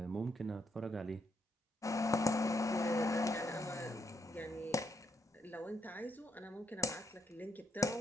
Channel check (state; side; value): normal; both; correlation 0.78